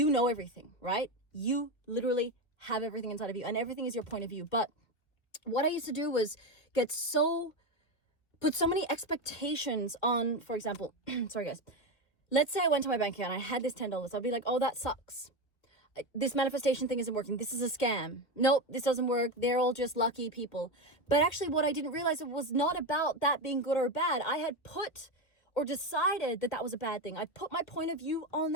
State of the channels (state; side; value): late; right; 1.9 ms